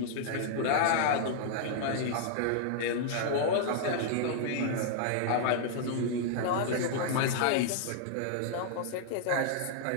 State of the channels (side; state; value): both; different; correlation -0.01